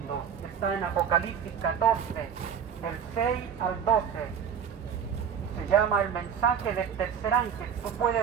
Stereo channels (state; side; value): quieter; left; 7.8 dB